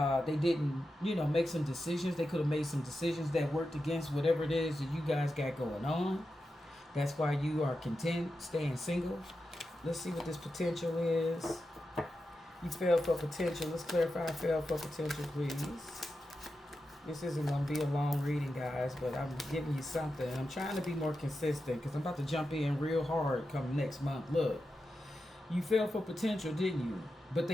They didn't, make some decisions. They could have made some decisions that worked against whatever it is that you guys got going on. That's why you are content staying single. Let's see what this potential is. You fell for potential. Let's clarify fell for potential, please. This isn't going to be a long reading, guys, but I'm giving you something. I'm trying to be more consistent because I'm about to jump in real hard come next month. Look, you fell for potential, didn't you? But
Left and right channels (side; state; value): both; normal; correlation 0.90